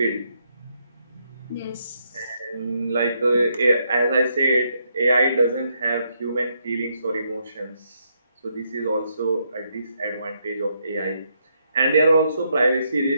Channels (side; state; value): both; inverted; correlation -0.76